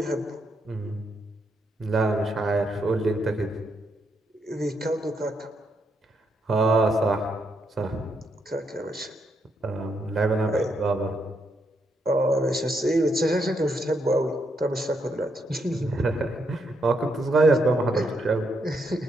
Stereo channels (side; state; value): both; normal; correlation 0.78